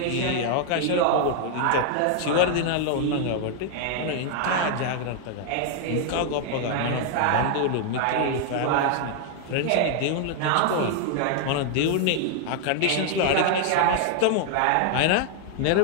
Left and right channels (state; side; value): different; both; correlation 0.00